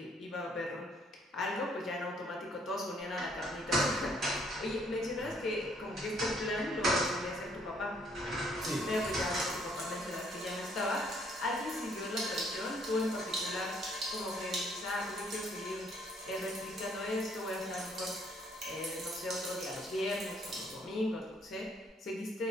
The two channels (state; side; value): normal; both; correlation 0.66